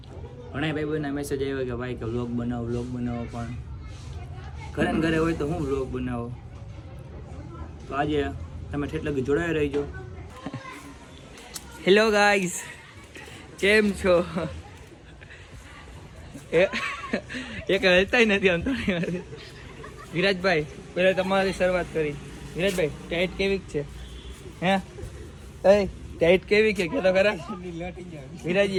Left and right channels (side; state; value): both; identical; correlation 1.00